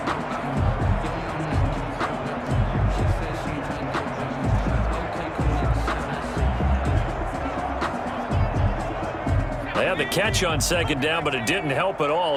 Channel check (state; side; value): identical; both; correlation 1.00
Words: They had the catch on 2nd down, but it didn't help at